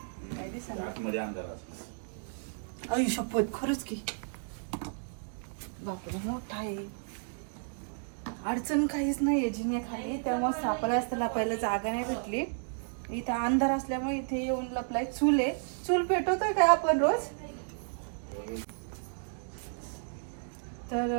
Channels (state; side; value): silent; left; digital silence